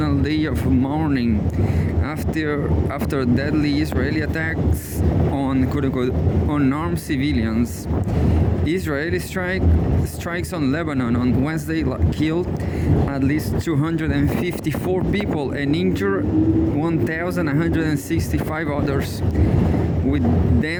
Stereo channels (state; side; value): identical; both; correlation 1.00